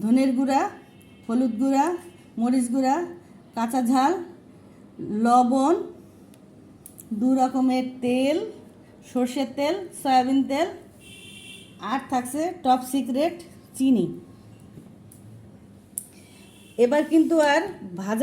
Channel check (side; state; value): both; identical; correlation 1.00